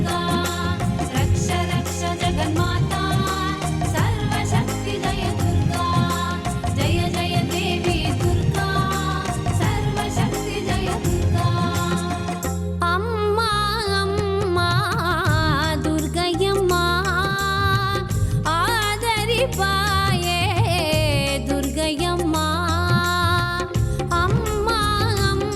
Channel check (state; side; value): identical; both; correlation 1.00